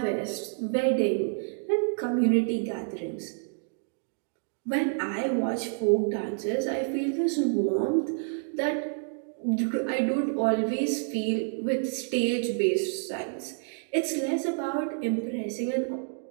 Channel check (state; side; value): silent; left; digital silence